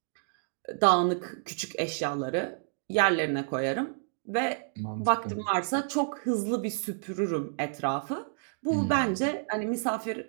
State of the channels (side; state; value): left; silent; digital silence